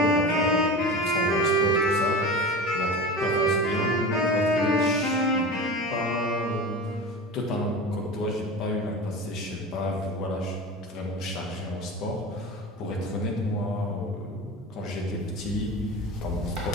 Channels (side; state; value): both; normal; correlation 0.31